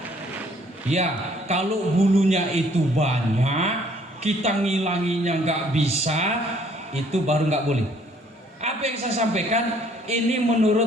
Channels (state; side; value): normal; both; correlation 0.62